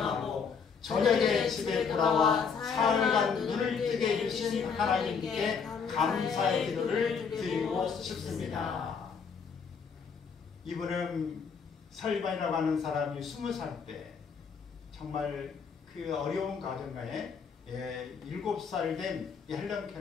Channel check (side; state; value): right; quieter; 6.0 dB